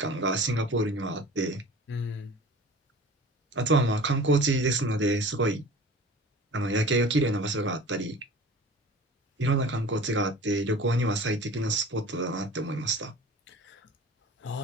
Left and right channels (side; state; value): both; normal; correlation 0.40